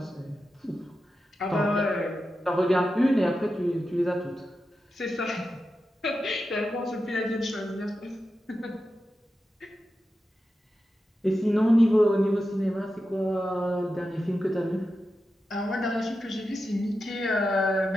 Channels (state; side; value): normal; both; correlation 0.90